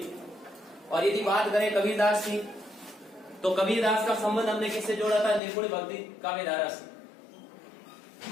और यदि बात करें कबीरदास की, तो कबीरदास का संबंध हमने किससे जोड़ा था? निर्गुण भक्ति काव्य धारा से।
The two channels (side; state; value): right; drops out; at 5.4 s